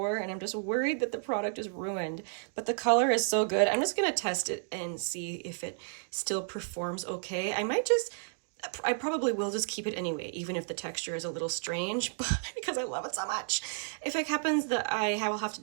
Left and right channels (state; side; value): silent; left; digital silence